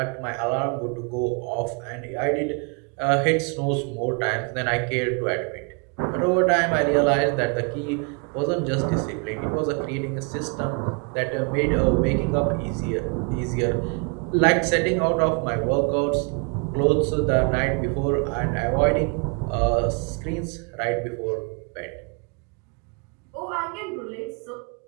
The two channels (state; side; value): quieter; left; 34.8 dB